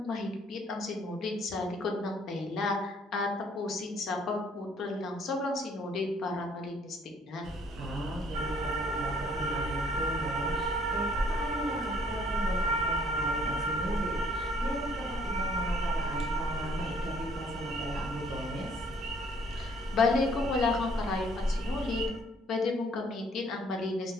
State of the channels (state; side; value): normal; both; correlation 0.61